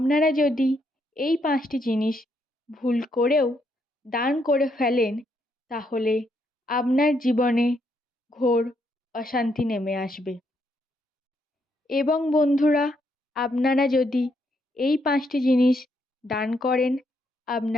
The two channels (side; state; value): both; normal; correlation 0.76